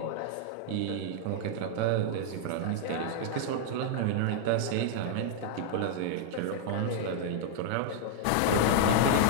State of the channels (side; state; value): both; different; correlation 0.00